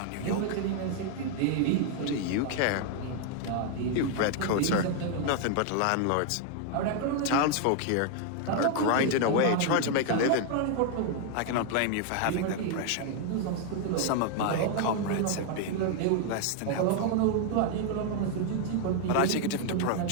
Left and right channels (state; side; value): different; both; correlation 0.00